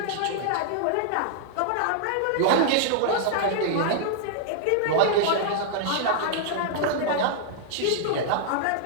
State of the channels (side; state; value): both; different; correlation -0.01